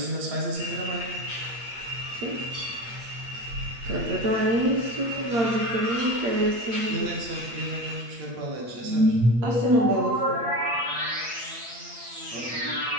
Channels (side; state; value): left; late; 8.6 ms